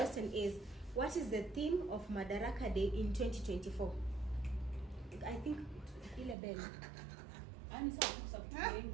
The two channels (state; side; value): drops out; left; at 6.4 s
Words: is, what is the theme of Madaraka Day in 2024? I think ile bell.